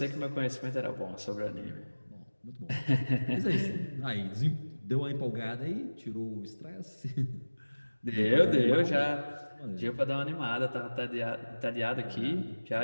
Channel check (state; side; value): inverted; both; correlation -1.00